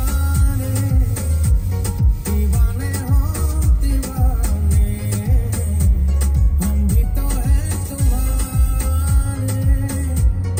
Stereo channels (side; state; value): both; identical; correlation 1.00